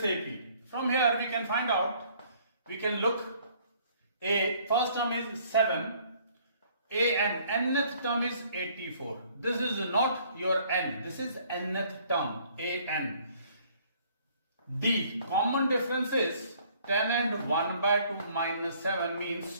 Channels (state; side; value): inverted; both; correlation -0.60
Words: AP. From here we can find out, we can look, A first term is 7, A and nth term is 84. This is not your n, this is nth term, A n. D common difference is 10 and 1 by 2 minus 7 means